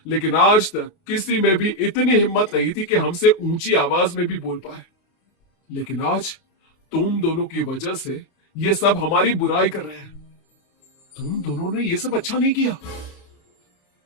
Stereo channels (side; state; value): right; late; 28 ms